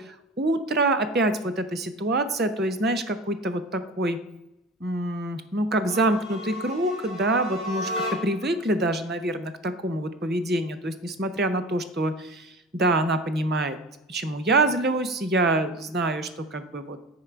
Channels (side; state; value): both; normal; correlation 0.36